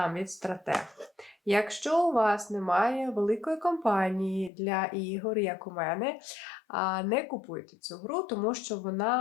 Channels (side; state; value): right; drops out; at 4.5 s